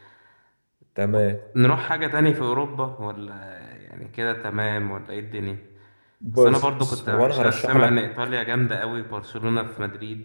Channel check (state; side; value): inverted; both; correlation -1.00